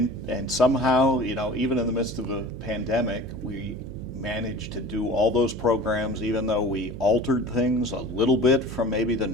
somehow, you know, even in the midst of a pandemic, we managed to do all those programs, even though we altered things a little bit from maybe the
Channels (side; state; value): right; noise; hum, 11 dB below the sound